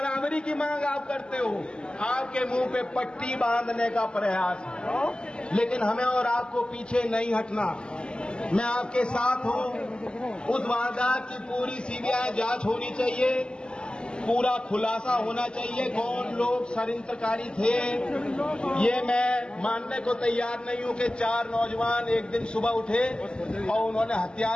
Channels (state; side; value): late; right; 0.050 ms